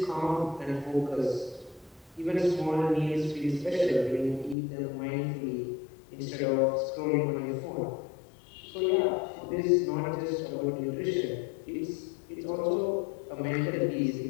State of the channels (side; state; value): right; drops out; at 4.5 s